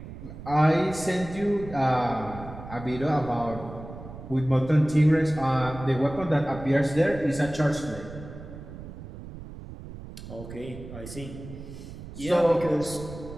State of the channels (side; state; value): right; noise; rumble, 13 dB below the sound